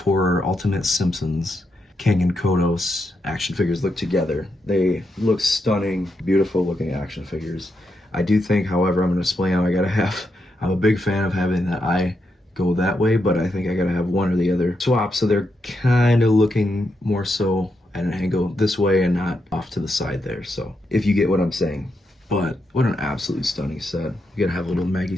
Ultimate Simpsons Kang and Kodos action figures look together. They look stunning, beautiful looking action figures. I do think, however, I'm gonna display them. I'm a big fan of having that eye go that way, but I think I gotta have one or the other swap, so they're kind of looking more so at an angle this way and not off to the side there. So if you get what I'm saying. But what an absolutely stunning set. You gotta have a little Maggie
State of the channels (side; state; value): both; normal; correlation 0.83